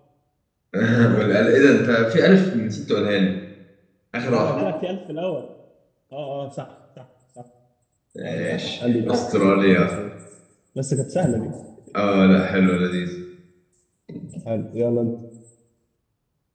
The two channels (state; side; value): identical; both; correlation 1.00